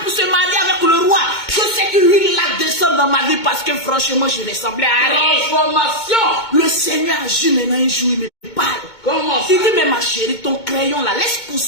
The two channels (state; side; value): late; right; 2.2 ms